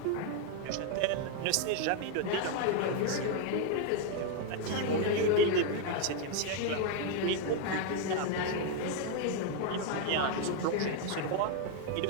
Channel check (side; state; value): both; different; correlation 0.01